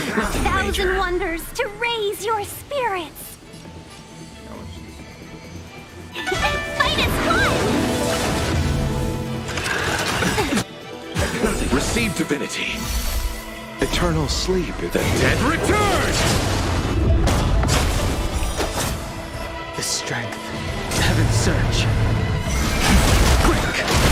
and wonders to raise your spirits. Fight is fun! Receive divinity. Eternal sleep is The dead return! The strength. Heaven's surge. Quick!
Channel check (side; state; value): both; identical; correlation 1.00